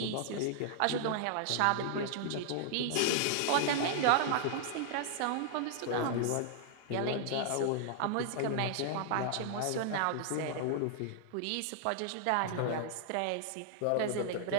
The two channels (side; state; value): both; different; correlation -0.01